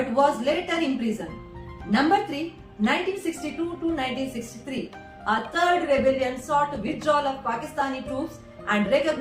was later imprisoned. Number 3, 1962 to 1963. A third rebellion sought withdrawal of Pakistani troops and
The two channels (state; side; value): identical; both; correlation 1.00